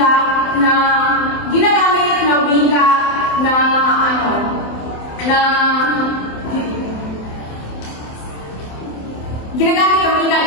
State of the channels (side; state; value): right; late; 27 ms